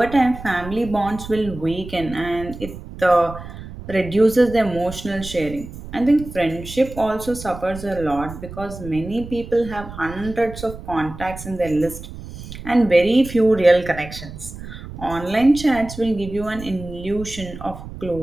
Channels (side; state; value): right; noise; rumble, 12 dB below the sound